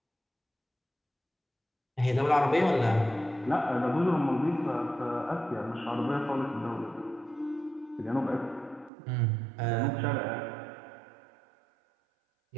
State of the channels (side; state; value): left; drops out; at 8.9 s